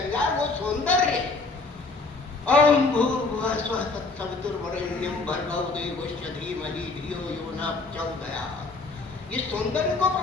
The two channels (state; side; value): quieter; right; 3.7 dB